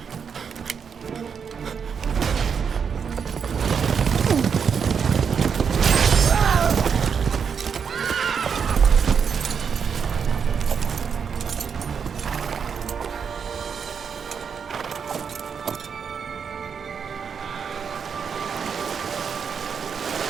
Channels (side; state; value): left; quieter; 6.6 dB